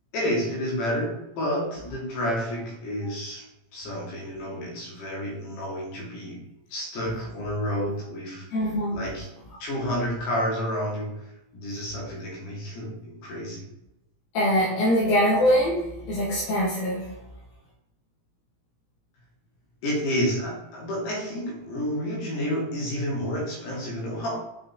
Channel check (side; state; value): right; late; 17 ms